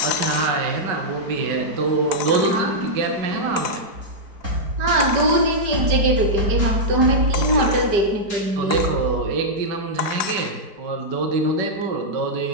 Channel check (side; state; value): left; late; 5.0 ms